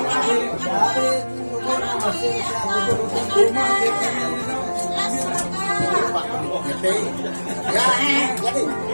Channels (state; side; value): inverted; both; correlation -1.00